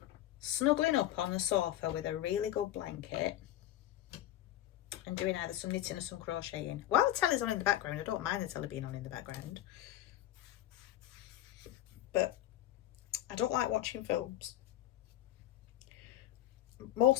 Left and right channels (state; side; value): quieter; right; 13.2 dB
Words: snuggling up on the sofa with a really good blanket and doing either some knitting or some crocheting. While the telly's on in the background, I don't mind the telly being on in the background. But I don't like watching films.